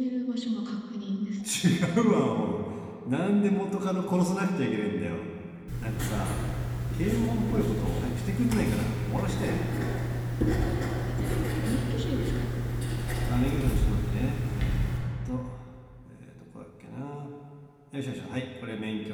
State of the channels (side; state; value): both; identical; correlation 1.00